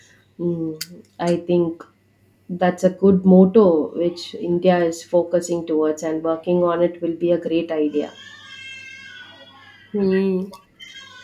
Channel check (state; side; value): identical; both; correlation 1.00